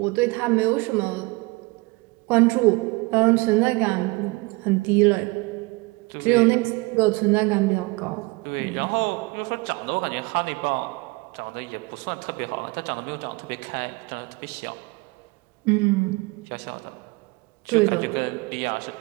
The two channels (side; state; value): left; quieter; 25.3 dB